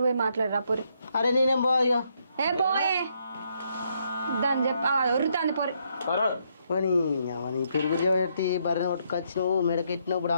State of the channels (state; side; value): inverted; both; correlation -0.74